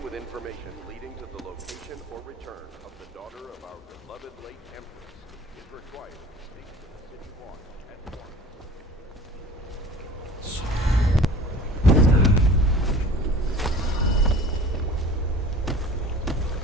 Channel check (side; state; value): both; normal; correlation 0.43